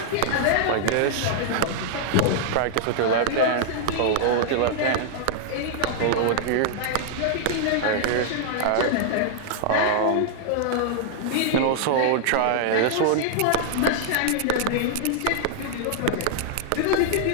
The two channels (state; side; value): different; both; correlation -0.01